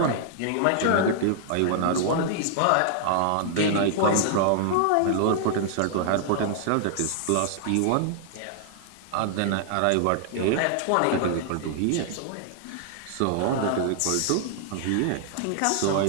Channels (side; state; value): both; different; correlation -0.01